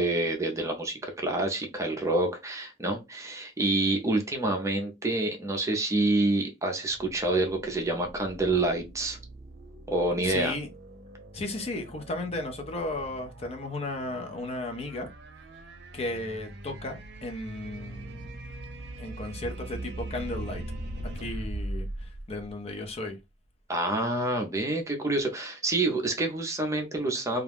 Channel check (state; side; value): normal; both; correlation 0.42